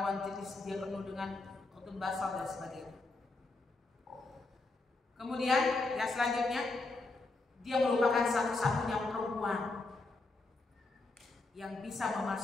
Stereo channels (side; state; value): right; quieter; 3.3 dB